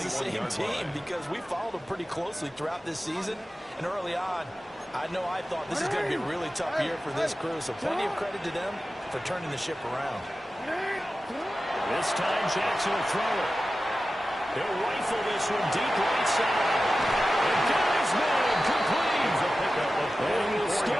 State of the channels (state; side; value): normal; both; correlation 0.94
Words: the same team because we followed them pretty closely throughout this season. And early on, I thought this is going to be a really tough year for this crew. So plenty of credit to them for turning the ship around. This time Jackson will throw it. He'll rifle this one deep right side. And got his man complete. And he will